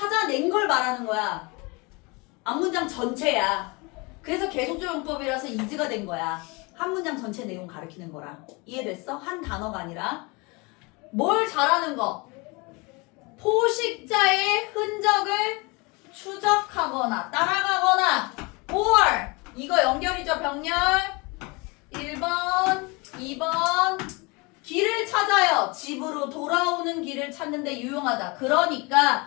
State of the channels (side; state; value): right; quieter; 27.5 dB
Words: 걸 말하는 거야. 앞문장 전체야. 그래서 계속적 용법이라서 is가 된 거야. 한 문장 전체 내용 가리키는 거라. 이해됐어? 한 단어가 아니라. 뭘 잘하는 거? 포식자의 흔적을 추적하거나 따라가거나 or 이거 연결이죠. 병렬 1번 2번 길을 찾아요. 집으로 돌아오는 길을 찾는데 유용하다.